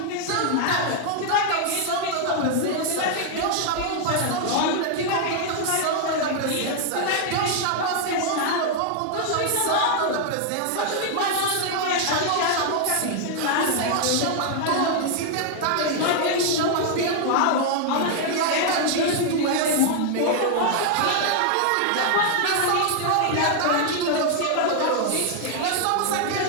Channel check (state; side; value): different; both; correlation 0.00